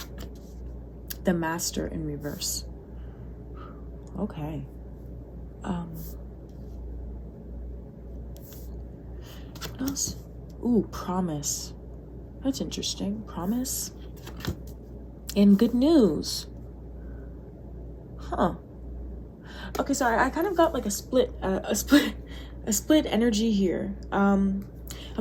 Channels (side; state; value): both; identical; correlation 1.00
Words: the Master in reverse. Okay. What else? Ooh, promise. That's interesting. Promise. And good news. Huh. Okay, sorry. I kind of got like a split energy here. I'm